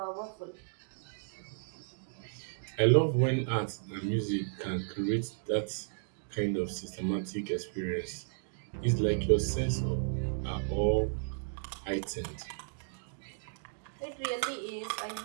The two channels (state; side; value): silent; left; digital silence